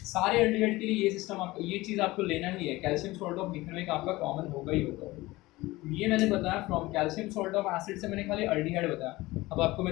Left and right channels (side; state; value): right; quieter; 19.7 dB